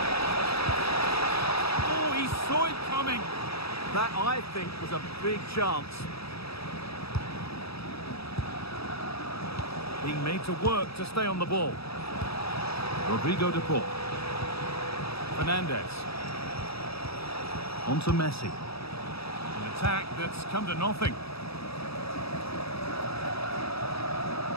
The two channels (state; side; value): late; right; 0.77 ms